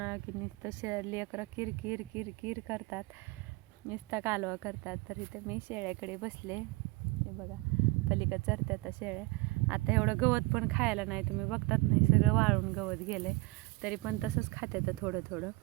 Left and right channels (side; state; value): left; quieter; 23.2 dB